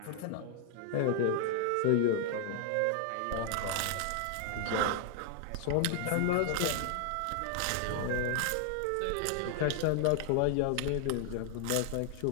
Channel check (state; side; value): different; both; correlation 0.00